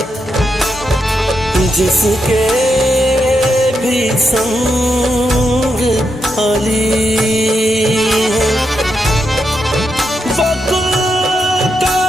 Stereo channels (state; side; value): normal; both; correlation 0.83